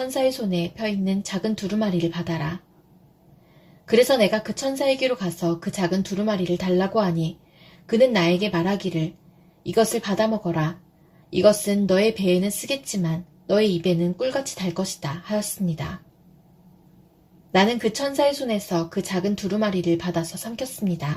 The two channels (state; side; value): identical; both; correlation 1.00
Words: 손에 펴 있는 작은 두루마리를 받아라. 그래서 내가 그 천사에게로 가서 그 작은 두루마리를 달라고 하니 그는 나에게 말하기를 이것을 받아 먹어라. 이것은 너의 배에는 쓰겠지만 너의 입에는 꿀같이 달 것이다 하였습니다. 나는 그 천사의 손에서 그 작은 두루마리를 받아서